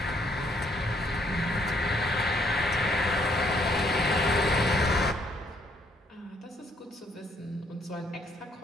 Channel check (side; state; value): both; normal; correlation 0.69